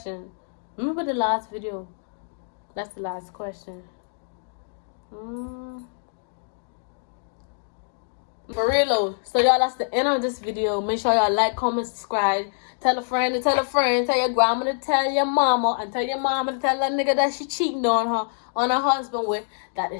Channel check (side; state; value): right; silent; digital silence